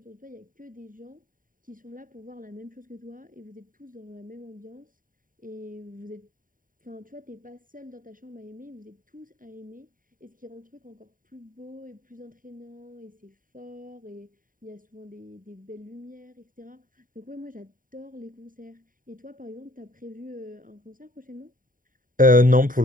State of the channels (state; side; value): late; left; 0.40 ms